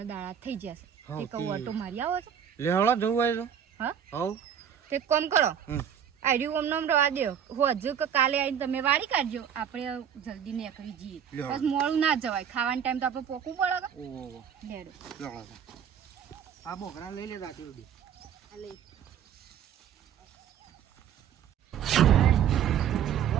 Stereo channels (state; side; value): quieter; left; 8.7 dB